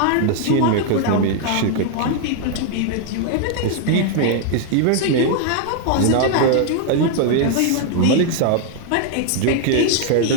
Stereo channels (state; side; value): different; both; correlation 0.00